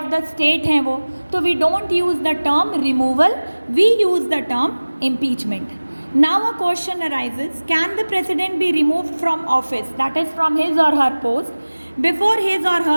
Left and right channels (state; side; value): inverted; both; correlation -1.00